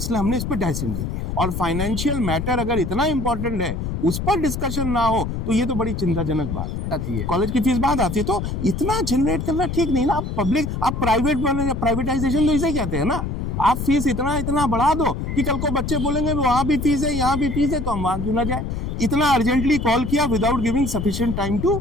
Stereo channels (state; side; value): noise; left; rumble, 4 dB below the sound